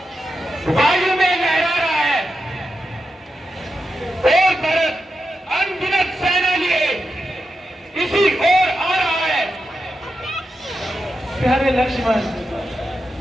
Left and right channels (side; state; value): both; normal; correlation 0.88